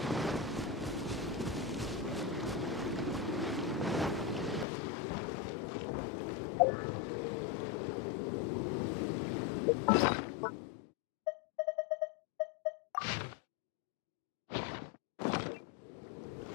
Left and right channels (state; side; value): drops out; right; at 4.7 s